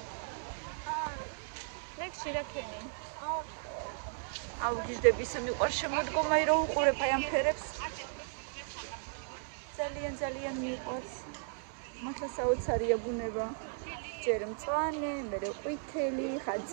ლექსი რა ქენი? აუგიჟდები ისე მიყვარს შემოდგომა, რომ უყურებ აი ამ ფერებს. ძალიან მიყვარს. მართლა საოცარია ბუნება. ჯერ მწვანე, მერე ყვითელი, ხან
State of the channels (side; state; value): left; silent; digital silence